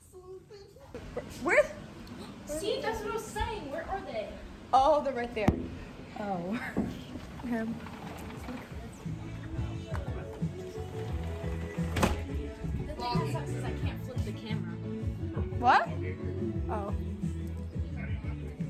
Where? See, that's what I was saying. Where are they? Oh, they're right there. Oh. Okay. The thing that sucks is I can't flip the camera. What? Oh.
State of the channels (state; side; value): identical; both; correlation 1.00